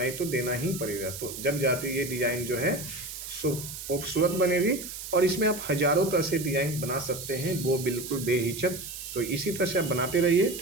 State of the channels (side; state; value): right; noise; hiss, 9 dB below the sound